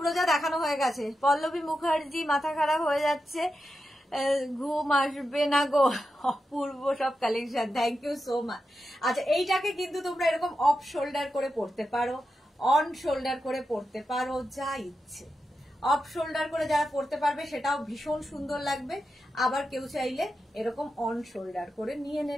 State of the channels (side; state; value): both; normal; correlation 0.89